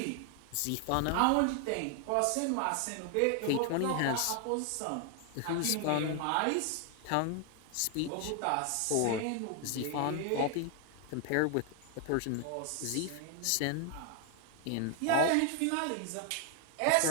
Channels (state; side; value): different; both; correlation 0.00